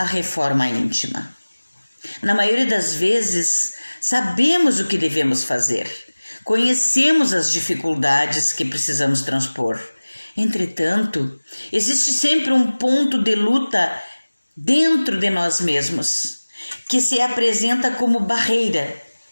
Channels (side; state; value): both; inverted; correlation -1.00